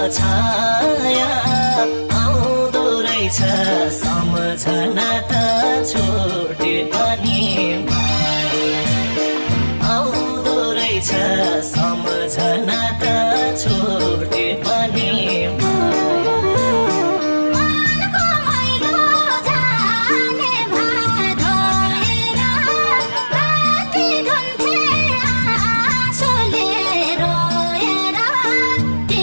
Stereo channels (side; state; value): both; inverted; correlation -1.00